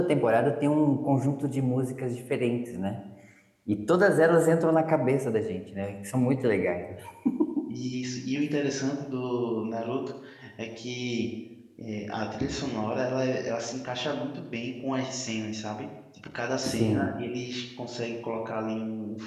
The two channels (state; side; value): identical; both; correlation 1.00